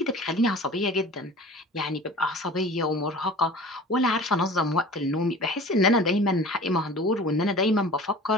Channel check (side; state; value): both; normal; correlation 0.41